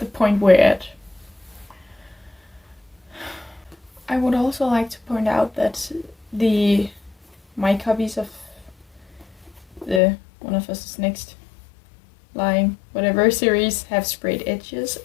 point we're at. I would also like to point out that my copies of the One of Us is Next line, whatever series, have sprayed edges,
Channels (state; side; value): drops out; right; at 10.0 s